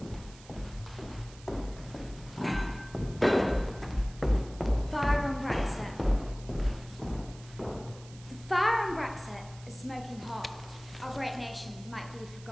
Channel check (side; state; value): right; noise; hiss, 21 dB below the sound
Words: Fire on Brexit. The fire on Brexit is smoking hot. Our great nation might be